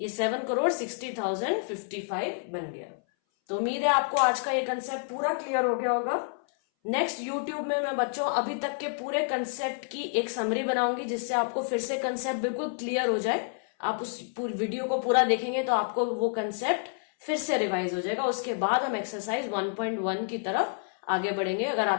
ये 7 करोड़ 60,000 55 बन गया। तो उम्मीद है आपको आज का ये कंसेप्ट पूरा क्लियर हो गया होगा। नेक्स्ट यूट्यूब में मैं बच्चों अभी तक के पूरे कंसेप्ट की एक समरी बनाऊंगी, जिससे आपको फिर से कंसेप्ट बिल्कुल क्लियर हो जाए। आप उस पूरी वीडियो को पूरा देखेंगे तो आपको वो कंसेप्ट फिर से रिवाइज हो जाएगा। उसके बाद हम एक्सरसाइज 1.1 की तरफ आगे बढ़ेंगे। अगर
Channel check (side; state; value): right; silent; 59 dB below the other